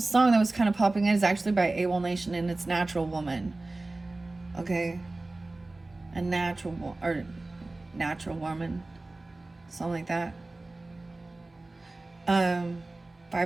that was kind of popping in is actually by AWOL Nation, and it's Natural Woman. Okay, a natural woman, something like that.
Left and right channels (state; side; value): quieter; left; 3.0 dB